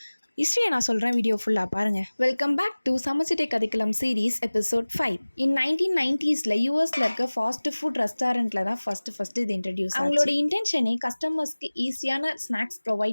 ஹிஸ்ட்ரியை நான் சொல்கிறேன், வீடியோ ஃபுல்லாக பாருங்கள். வெல்கம் பேக் டு சமைச்சிட்டே கதைக்கலாம் சீரீஸ் எபிசோட் 5. இன் 1990s யூஎஸில் இருக்க ஃபாஸ்ட் ஃபுட் ரெஸ்டாரண்ட்டில் தான் ஃபஸ்ட்டு இது இன்ட்ரடியூஸ். அவங்களோட இன்டென்ஷனே கஸ்டமர்ஸ்க்கு ஈஸியான ஸ்நாக்ஸ்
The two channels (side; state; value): both; inverted; correlation -1.00